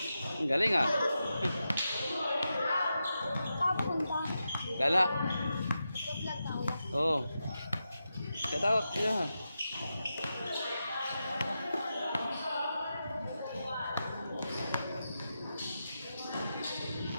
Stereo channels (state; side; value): inverted; both; correlation -0.89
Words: Ang galing ah. Papunta. Gala. Vlog tayo. Oh. Get out. Yeah.